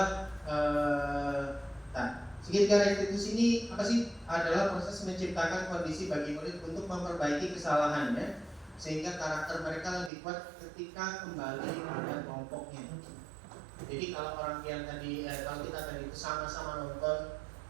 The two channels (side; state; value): left; drops out; at 10.1 s